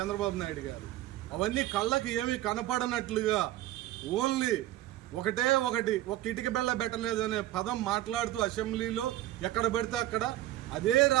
నాయుడు గారు. అవన్నీ కళ్ళకి ఏమీ కనపడనట్లుగా ఓన్లీ ఒకటే ఒకటి, ఒక ఇటుక బెల్ల పెట్టలేదనే పదం మాట్లాడుతూ అసెంబ్లీలో ఎక్కడ పెడితే అక్కడ, అదే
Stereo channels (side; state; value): left; quieter; 14.7 dB